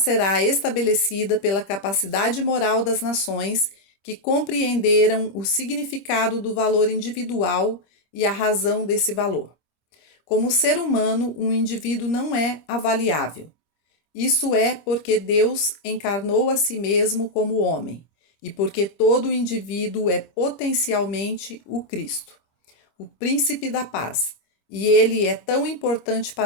estabelecida pela capacidade moral das nações que compreenderam o significado do valor individual e a razão desse valor. Como ser humano, um indivíduo não é avaliável. Isso é porque Deus encarnou a si mesmo como homem e porque todo indivíduo é potencialmente o Cristo, o príncipe da paz, e ele é tão importante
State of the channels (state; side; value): late; right; 26 ms